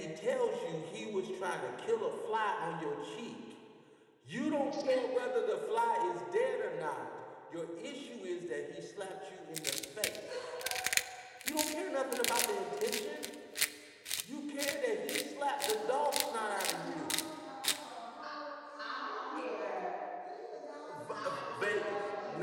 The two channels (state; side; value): identical; both; correlation 1.00